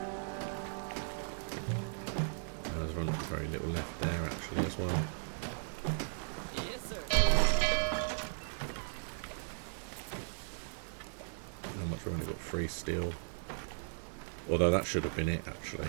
There's very little left there actually as well. How much? We've only got 3 steel. Although that should have been it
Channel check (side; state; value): left; silent; digital silence